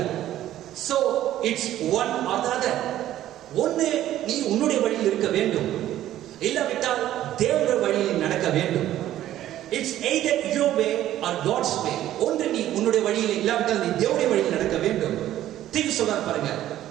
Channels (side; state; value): left; quieter; 13.0 dB